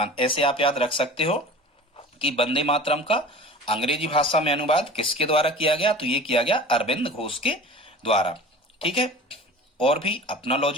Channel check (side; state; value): both; normal; correlation 0.39